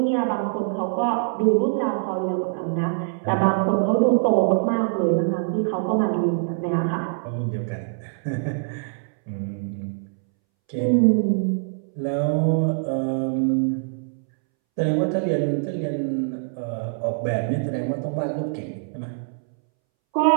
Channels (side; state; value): left; silent; 63 dB below the other